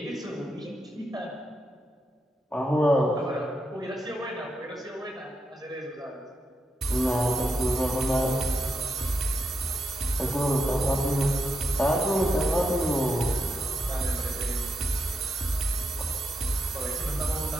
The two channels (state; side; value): normal; both; correlation 0.83